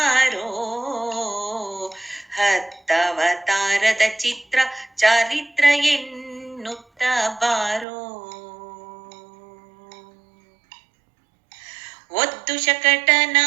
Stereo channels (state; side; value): drops out; left; at 7.9 s